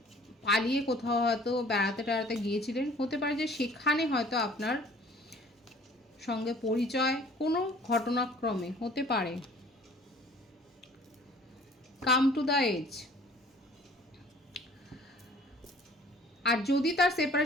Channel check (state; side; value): normal; both; correlation 0.52